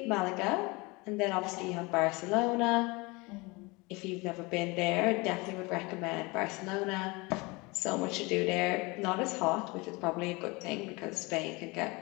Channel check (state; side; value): quieter; right; 25.3 dB